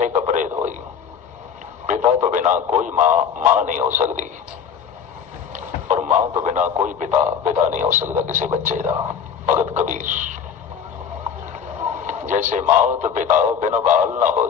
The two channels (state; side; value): quieter; right; 7.4 dB